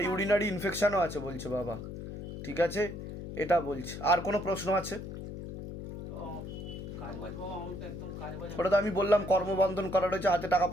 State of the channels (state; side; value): noise; left; hum, 9 dB below the sound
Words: ইউরিনারি ইনফেকশনও আছে বলছে বাবা। ঠিক আছে, এটা বলছে। আর কোনো প্রশ্ন আছে? কাজবাজ বাবা, আমার তো একদম কাজবাজ। ওটা তো আমি বললাম কর্মবন্ধন করা রয়েছে, হাতে টাকা